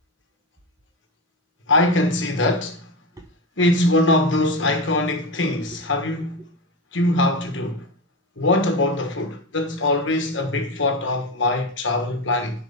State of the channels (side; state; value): both; normal; correlation 0.19